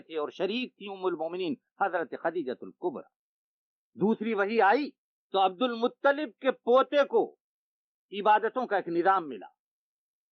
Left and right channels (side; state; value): both; identical; correlation 1.00